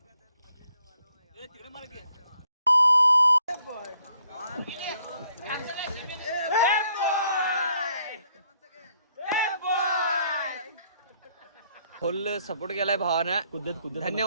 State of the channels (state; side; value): inverted; both; correlation -0.69